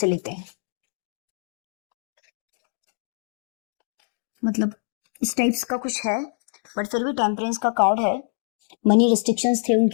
लेते हैं, मतलब इस टाइप्स का कुछ है, बट फिर भी टेम्परेंस का कार्ड है। मनी रिस्ट्रिक्शंस थे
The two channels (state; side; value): silent; right; digital silence